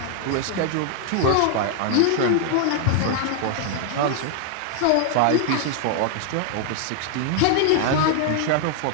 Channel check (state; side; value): different; both; correlation 0.00